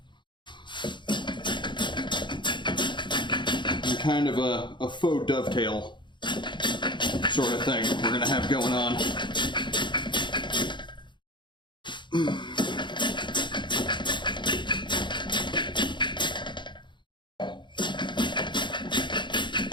And kind of a faux dovetail sort of thing we're going to have going on.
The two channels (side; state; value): right; late; 0.23 ms